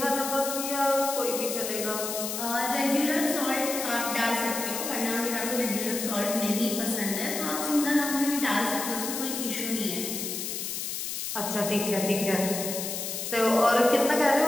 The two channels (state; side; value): noise; left; hiss, 4 dB below the sound